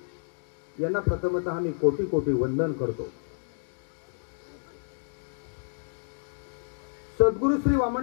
यांना प्रथमतः मी कोटी कोटी वंदन करतो। सद्गुरू श्री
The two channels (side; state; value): right; silent; digital silence